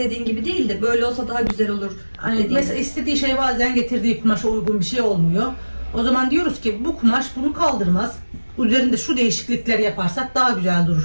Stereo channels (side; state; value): both; inverted; correlation -1.00